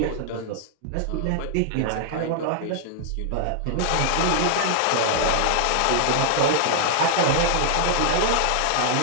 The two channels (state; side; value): different; both; correlation -0.01